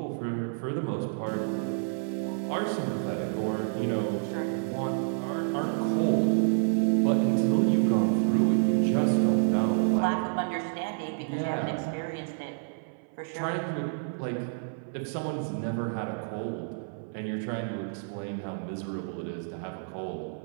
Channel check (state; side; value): silent; left; 56 dB below the other